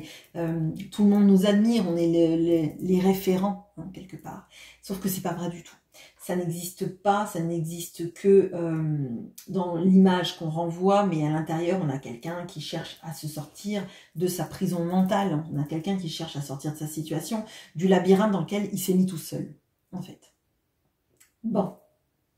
tout le monde nous admire, on est les référents, hein, quelque part. Sauf que c'est pas vrai du tout. Ça n'existe pas, ça n'existe que dans l'image qu'on renvoie, mais à l'intérieur, on a quelqu'un qui cherche à se sortir de sa prison mentale, on a quelqu'un qui cherche à sortir de sa situation, du labyrinthe dans lequel il s'est mis tout seul, en fait. Bon,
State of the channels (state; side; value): identical; both; correlation 1.00